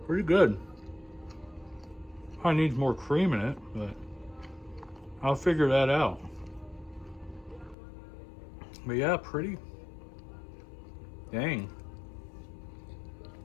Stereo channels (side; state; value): right; drops out; at 7.8 s